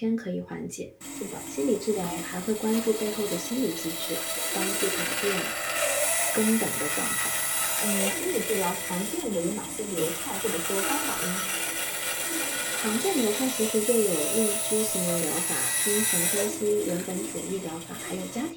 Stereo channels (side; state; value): both; identical; correlation 1.00